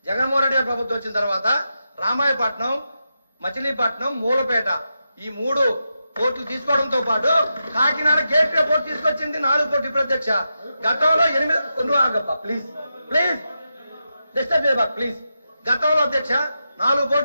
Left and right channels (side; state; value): both; inverted; correlation -0.88